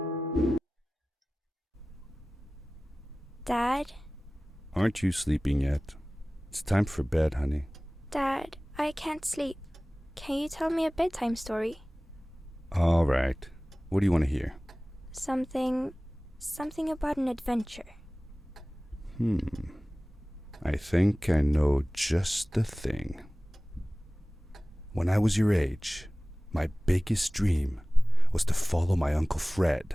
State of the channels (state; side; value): normal; both; correlation 0.98